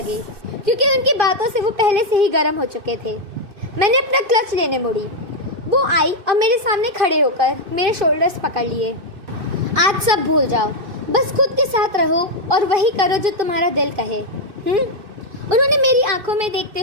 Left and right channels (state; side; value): late; left; 2.4 ms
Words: क्योंकि उनकी बातों से वो पहले से ही गर्म हो चुके थे। मैंने अपना क्लच लेने मुड़ी। वो आई और मेरे सामने खड़े होकर मेरे शोल्डर्स पकड़ लिए। आज सब भूल जाओ, बस खुद के साथ रहो और वही करो जो तुम्हारा दिल कहे। उन्होंने मेरी आंखों में देखते